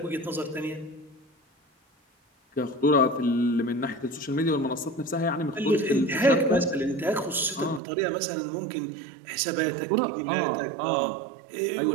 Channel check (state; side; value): drops out; left; at 7.8 s